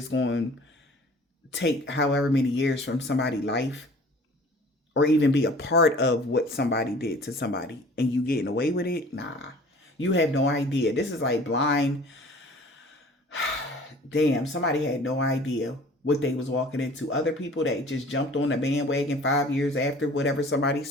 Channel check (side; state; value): both; normal; correlation 0.48